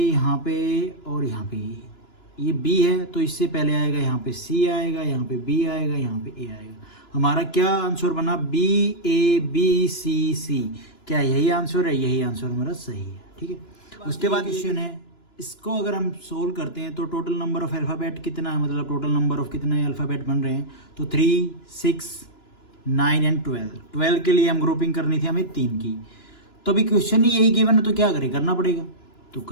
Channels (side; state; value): right; late; 2.9 ms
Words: पे और यहाँ पे ये बी है, तो इससे पहले आएगा यहाँ पे सी आएगा, यहाँ पे बी आएगा, यहाँ पे ए आएगा। हमारा क्या आंसर बना, बी ए बी सी सी। क्या यही आंसर है, यही आंसर हमारा सही है। ठीक है, उसके बाद क्वेश्चन है, इसको अगर हम सोल्व करते हैं तो टोटल नंबर ऑफ अल्फ़ाबेट कितना है, मतलब टोटल नंबर ऑफ कितने अल्फ़ाबेट बन रहे हैं। तो 3, 6, 9 एंड 12 के लिए हम ग्रुपिंग करनी थी हमें 3 की। तो अभी क्वेश्चन ही यही गिवन है तो क्या करें, करना पड़ेगा। तो